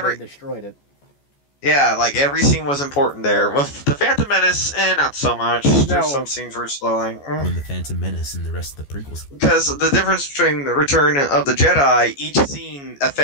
they destroyed it. Yeah, like, every scene was important there. With the Phantom Menace, not so much. No. There's some scenes were slowing. When the Phantom Menace and the rest of the prequels. Because the difference between the Return of the Jedi, each scene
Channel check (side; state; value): right; late; 14 ms